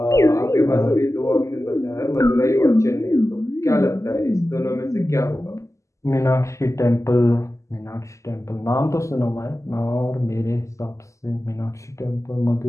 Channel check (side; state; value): right; late; 0.15 ms